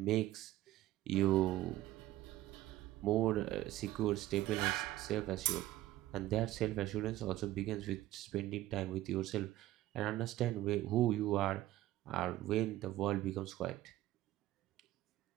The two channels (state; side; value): quieter; left; 15.2 dB